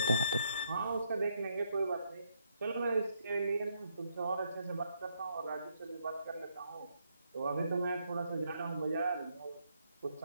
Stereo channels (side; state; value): both; inverted; correlation -0.75